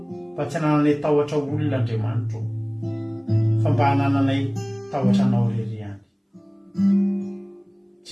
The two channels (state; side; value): identical; both; correlation 1.00